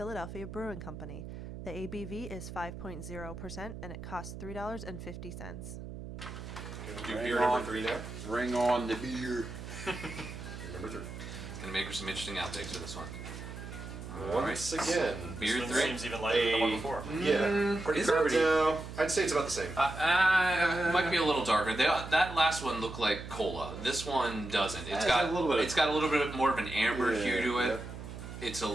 Brewing Company. The ABV is 5.0% and it costs $3.50. Gonna do Bring beer on. number 3 now. Bring on the beer. Beer number 3. It's gonna make for some interesting outtakes for this one. Once again, Beer This one 3. seems even lighter than the one before. yeah, pretty is it? carbonated. No, I'd say it's about the same. It might be a little darker. That last one looked like cola. This one doesn't. It's It got has a little bit of- it's got a little bit more of an amber Yeah, hue to it. yep. It's a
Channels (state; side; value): noise; right; hum, 10 dB below the sound